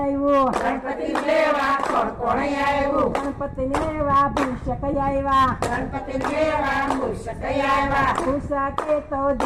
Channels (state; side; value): identical; both; correlation 1.00